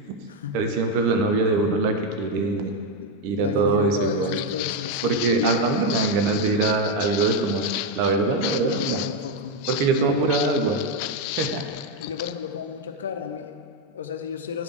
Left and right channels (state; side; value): normal; both; correlation 0.05